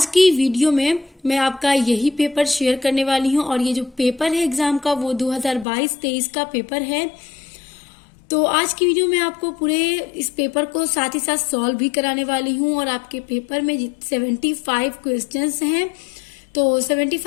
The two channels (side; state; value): right; drops out; at 5.7 s